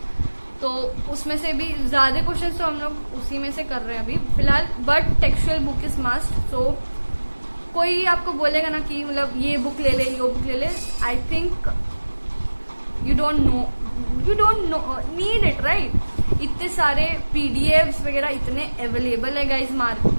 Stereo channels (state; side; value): inverted; both; correlation -1.00